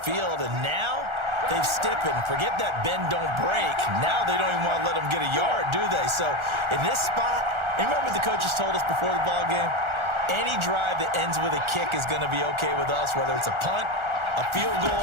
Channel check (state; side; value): late; left; 1.4 ms